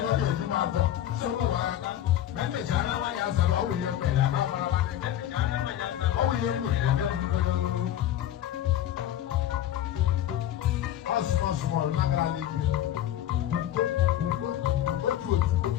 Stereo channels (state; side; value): quieter; right; 11.9 dB